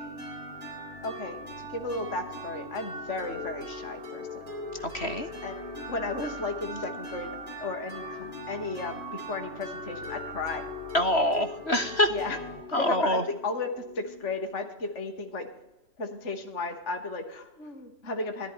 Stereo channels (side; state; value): right; late; 3.0 ms